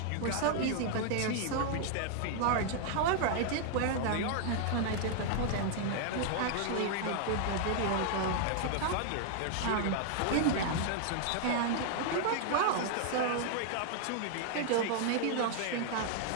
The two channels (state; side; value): different; both; correlation 0.00